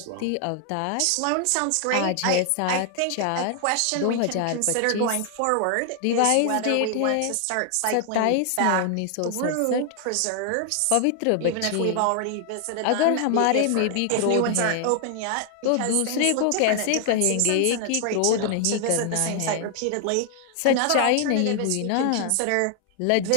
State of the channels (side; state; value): both; different; correlation 0.00